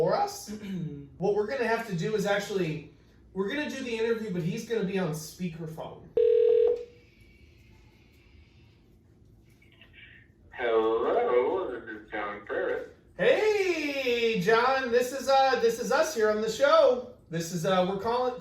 us. What we're going to have to do is actually, we're going to do the interview, but he's going to be on speakerphone. Hello, this is John Freres. Hey, John, this is us here on the show. This is we're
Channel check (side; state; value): both; identical; correlation 1.00